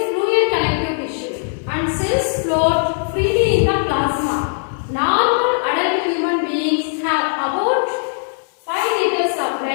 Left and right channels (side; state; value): right; silent; 67 dB below the other